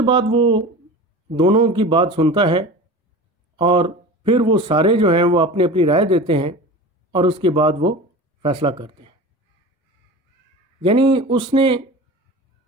बाद वो दोनों की बात सुनता है और फिर वो सारे जो हैं वो अपनी अपनी राय देते हैं और उसके बाद वो फ़ैसला करते हैं। यानी उसने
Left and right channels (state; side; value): normal; both; correlation 0.34